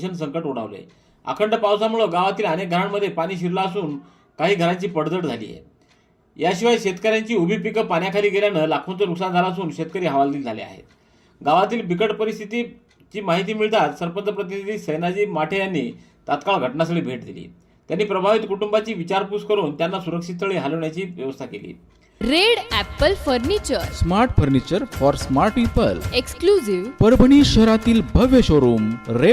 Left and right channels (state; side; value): identical; both; correlation 1.00